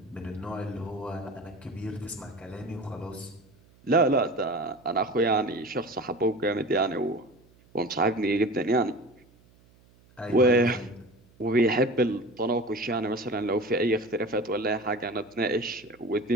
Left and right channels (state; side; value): noise; right; hum, 29 dB below the sound